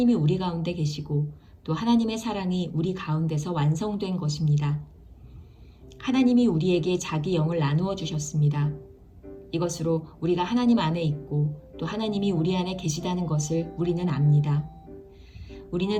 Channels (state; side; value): identical; both; correlation 1.00